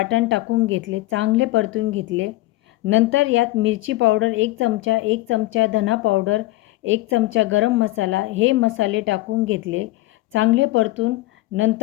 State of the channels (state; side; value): quieter; right; 18.3 dB